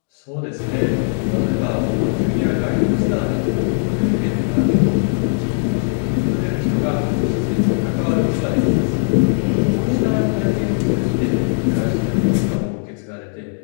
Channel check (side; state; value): right; silent; digital silence